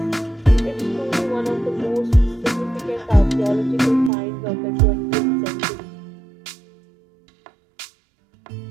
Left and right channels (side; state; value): left; drops out; at 4.1 s